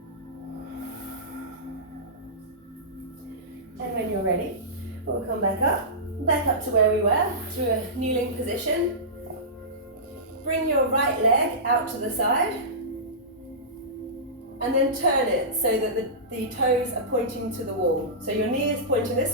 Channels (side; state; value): both; normal; correlation -0.18